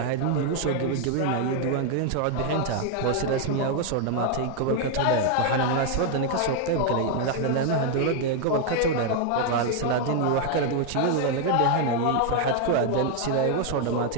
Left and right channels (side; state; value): both; different; correlation 0.00